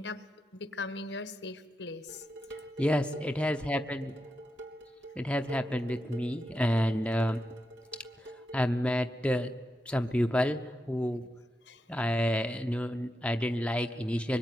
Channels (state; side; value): normal; both; correlation 0.87